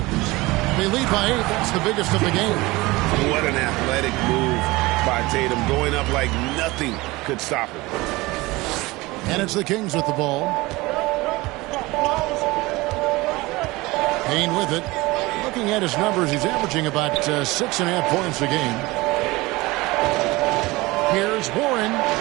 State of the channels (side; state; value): left; quieter; 21.3 dB